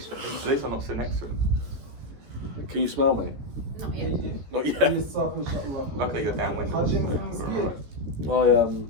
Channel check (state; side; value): late; left; 14 ms